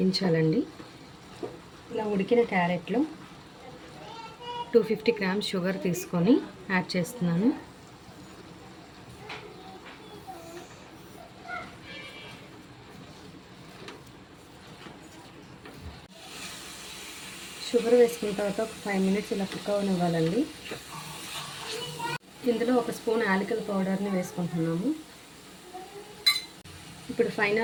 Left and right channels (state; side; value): identical; both; correlation 1.00